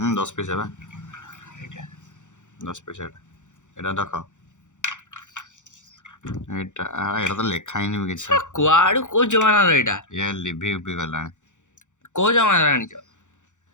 10 ପଇସା ବା এটা 10 ପଇସା ଏଇଟା ଦେଖ। ଏଇଟା ତ ଲେଖା ହେଇନି ବି କିଛି। କୁଆଡୁ କୋଉ ଜମାନାର ଏଇଟା? ଇଏ ଲିଭି ଗଲାଣି। କୋଉ ଜମାନାର ଆଣିଛ?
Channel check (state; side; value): late; right; 0.85 ms